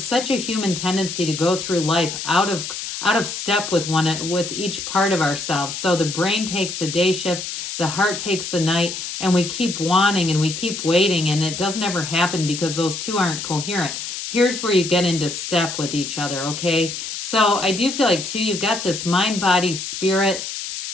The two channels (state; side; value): noise; left; hiss, 6 dB below the sound